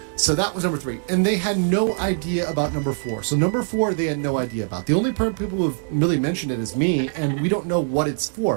So that was number 3. And they had no idea about number 4. So number 4, they had no idea about. The only people who have really mentioned it is me, and we don't know what it's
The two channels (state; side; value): silent; left; 64 dB below the other